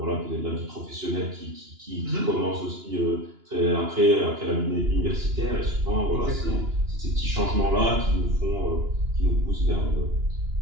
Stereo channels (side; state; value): left; late; 2.9 ms